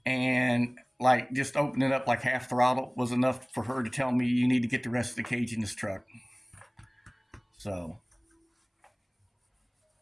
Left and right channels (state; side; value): identical; both; correlation 1.00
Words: and like just opening it up like half throttle was enough for her to tell me you need to get the rest of the cage in this truck. So,